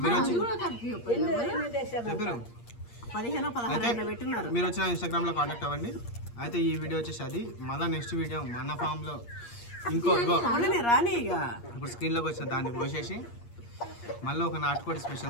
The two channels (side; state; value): right; late; 8.5 ms